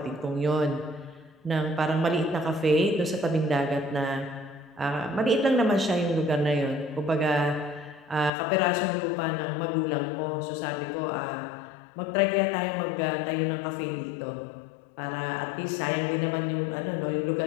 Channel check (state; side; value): drops out; right; at 8.3 s